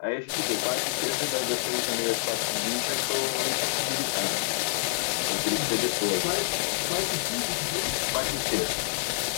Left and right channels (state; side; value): silent; right; 60 dB below the other